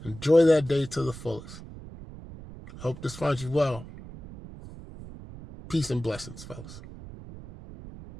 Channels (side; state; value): right; noise; rumble, 15 dB below the sound